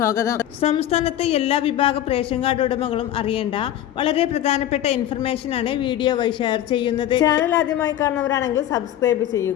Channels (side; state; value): right; quieter; 11.9 dB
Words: സംസ്ഥാനത്തെ എല്ലാ വിഭാഗ റേഷൻ കാർഡ് ഉടമകളും അറിയേണ്ട വളരെ പ്രധാനപ്പെട്ട ഇൻഫർമേഷനാണ് വീഡിയോ വഴി ഷെയർ ചെയ്യുന്നത്. ചാനൽ ആദ്യമായി കാണുന്നവരാണെങ്കിൽ സബ്സ്ക്രൈബ്